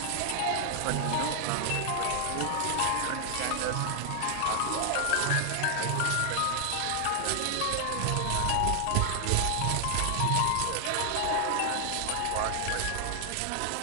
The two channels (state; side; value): different; both; correlation 0.00